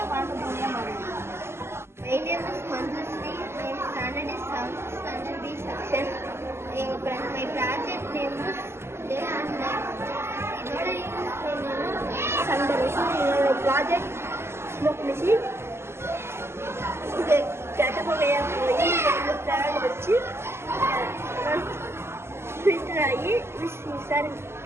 வறண்ட பூமியாக மாறுது. My name is Manjushree. Standard B section. My project name is day and night. இதோட சண்டே ப்ராஜெக்ட் ஸ்மோக் மிஷின். இது கெட்ட புகையாக போய் ஃபேன் வச்சு ஃபில்டர் ஆகி சார்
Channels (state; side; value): late; left; 0.12 ms